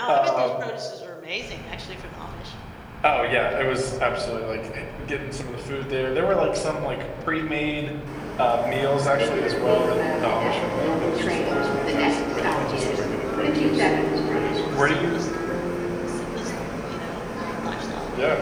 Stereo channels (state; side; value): identical; both; correlation 1.00